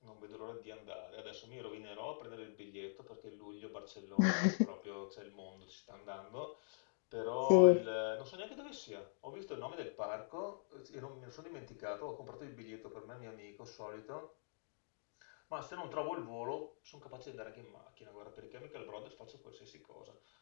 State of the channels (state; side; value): silent; right; digital silence